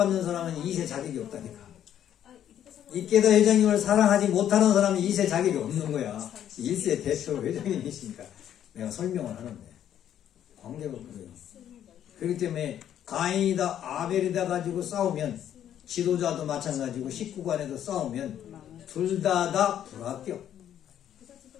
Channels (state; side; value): quieter; right; 10.4 dB